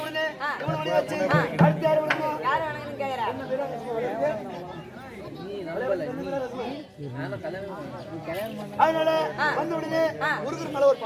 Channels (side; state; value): both; identical; correlation 1.00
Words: உடனே வச்சு அடுத்து யார் அதனால வந்து உடனே முருகர் மேல ஒரு